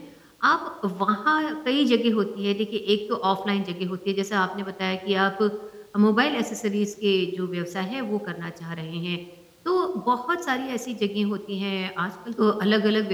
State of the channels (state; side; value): identical; both; correlation 1.00